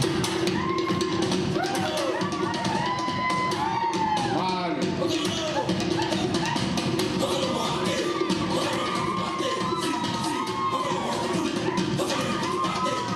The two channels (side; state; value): both; identical; correlation 1.00